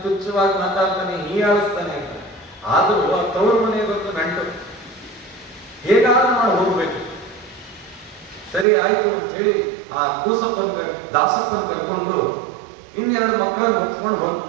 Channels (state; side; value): drops out; left; at 8.7 s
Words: ತುಚ್ಛವಾಗಿ ಮಾತಾಡ್ತಾನೆ, ಹೀಯಾಳಿಸ್ತಾನೆ ಅಂತ. ಆದರೂ ಆ ತವ್ರ ಮನೆಗೆ ಗೊತ್ತು ನಂಟು, ಹೇಗಾದ್ರೂ ಮಾಡಿ ಹೋಗ್ಬೇಕು. ಸರಿ, ಆಯ್ತು ಅಂತ ಹೇಳಿ ಆ ದಾಸಪ್ಪನ ಕರ್ಕೊಂಡು ಇನ್ನೆರಡು ಮಕ್ಕಳನ್ನು ಹೊತ್ಕೊಂಡು